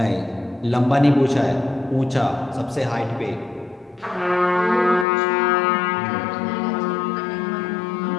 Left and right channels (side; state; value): right; drops out; at 5.1 s